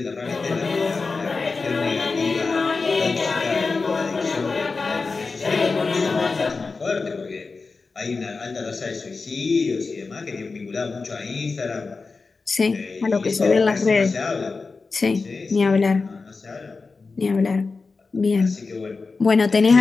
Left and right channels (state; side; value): quieter; right; 4.2 dB